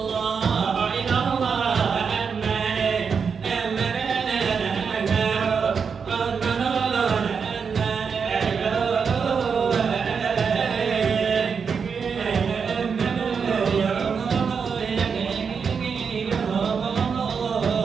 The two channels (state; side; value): quieter; left; 6.0 dB